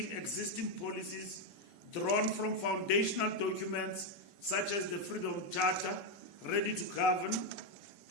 existing policies drawn from foundational documents such as the Freedom Charter, Ready to Govern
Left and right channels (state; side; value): late; left; 5.2 ms